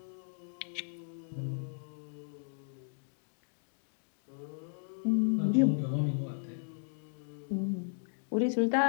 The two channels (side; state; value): right; silent; digital silence